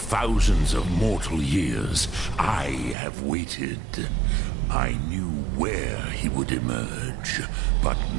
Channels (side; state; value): left; drops out; at 3.0 s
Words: of mortal years, I have waited. I knew where he would emerge, but